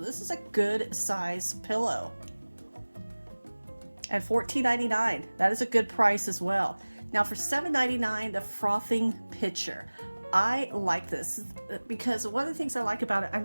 is a good size pillow. And $14.99. That is a good price as well. Now for $7.99, the frothing pitcher. I like this because one of the things I like about it, I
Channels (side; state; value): both; inverted; correlation -1.00